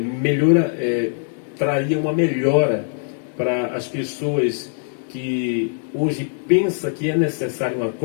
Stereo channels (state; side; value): silent; right; digital silence